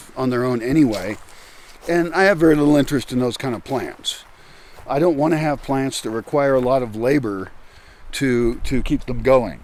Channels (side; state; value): both; identical; correlation 1.00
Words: on their own anyway. And I have very little interest in those kind of plants. I don't want to have plants that require a lot of labor to keep them going.